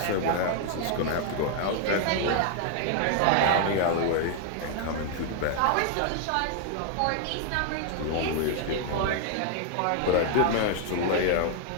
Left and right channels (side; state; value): both; different; correlation 0.00